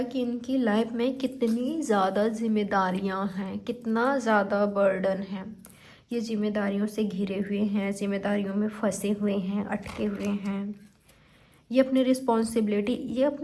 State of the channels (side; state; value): both; identical; correlation 1.00